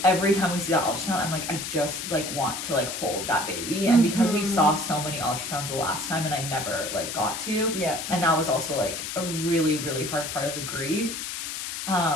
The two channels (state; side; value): noise; left; hiss, 6 dB below the sound